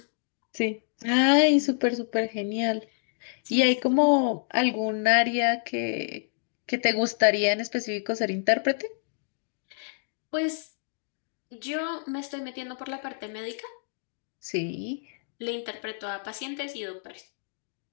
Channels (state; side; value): silent; right; digital silence